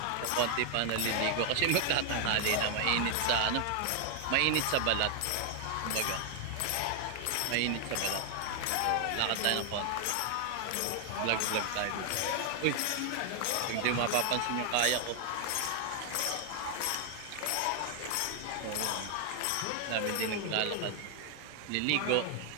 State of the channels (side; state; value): both; different; correlation 0.00